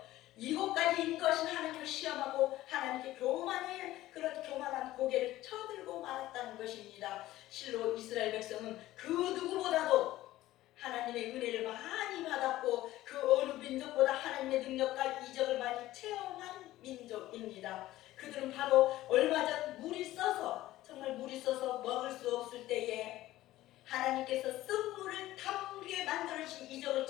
이곳까지 인 것인 하나님을 시험하고 하나님께 그런 교만한 고개를 쳐들고 말았다는 것입니다. 실로 이스라엘 백성은 그 누구보다도 하나님의 은혜를 많이 받았고 그 어느 민족보다 하나님의 능력과 이적을 많이 체험한 민족입니다. 그들은 바로 얼마 전 정말 물이 써서 먹을 수 없을 때에 하나님께서 쓴물을 담게 만들어주신 이적을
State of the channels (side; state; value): right; quieter; 15.7 dB